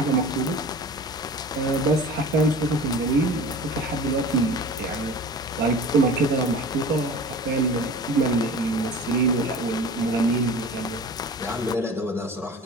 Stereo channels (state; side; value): normal; both; correlation 0.39